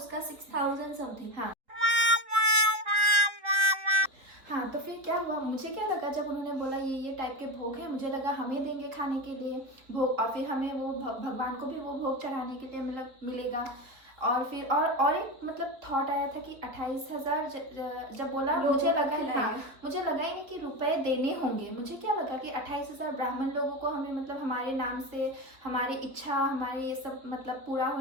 6,000 समथिंग। हाँ। हाँ, तो फिर क्या हुआ, मुझे क्या लगा जब उन्होंने बोला ये टाइप के भोग हैं, मुझे लगा हमें देंगे खाने के लिए भोग, और फिर हमें वो भगवान को भी वो भोग चढ़ाने के लिए मतलब मिलेगा। और फिर और एक मतलब थॉट आया था कि 28,000 जब बोला, मुझे लगा मुझे लगा ही नहीं कि रुपए देने होंगे। मुझे क्या लगा कि 28,000 ब्राह्मण लोगों को हमें मतलब हमारे नाम से, हमारी इच्छा, हमारे ये सब मतलब पूरा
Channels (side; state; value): left; late; 3.8 ms